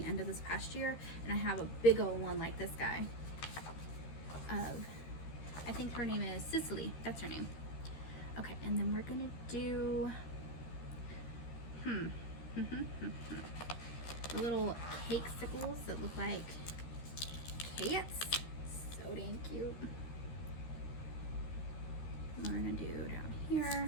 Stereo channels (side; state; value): right; late; 13 ms